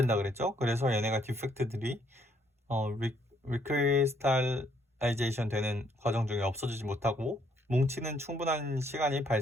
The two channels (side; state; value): both; normal; correlation 0.69